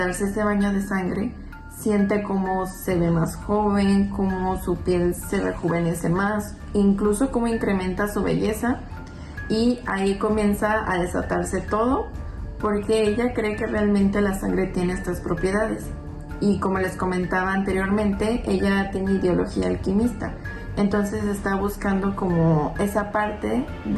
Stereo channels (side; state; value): both; identical; correlation 1.00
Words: ese baño de sangre, siente cómo se ve más joven, cómo su piel se rejuvenece más, incluso cómo incrementa su belleza, y ahí comienza a desatarse todo, porque ella cree que realmente la sangre tiene estas propiedades. Y como les comentaba anteriormente, ella tiene ideología alquimista, entonces está buscando como esa parte